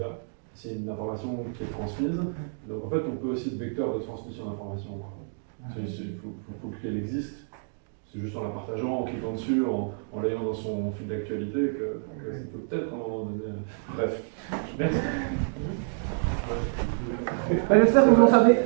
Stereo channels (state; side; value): silent; left; digital silence